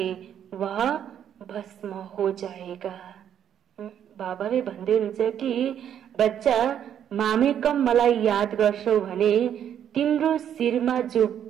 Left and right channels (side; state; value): left; quieter; 9.5 dB